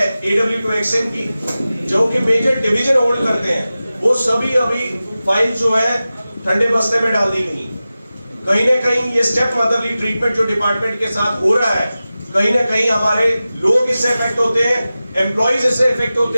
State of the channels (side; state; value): both; inverted; correlation -0.95